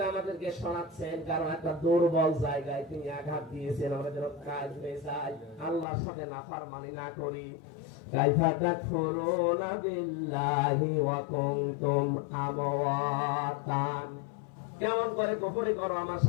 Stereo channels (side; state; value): right; drops out; at 5.9 s